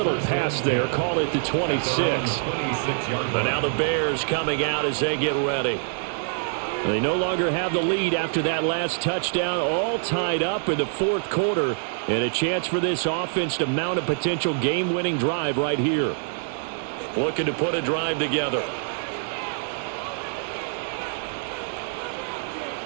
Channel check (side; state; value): left; silent; digital silence